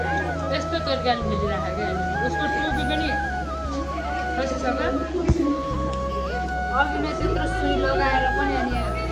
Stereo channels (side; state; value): both; identical; correlation 1.00